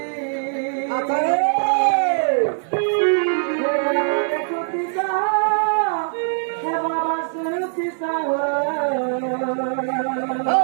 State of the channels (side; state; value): left; silent; digital silence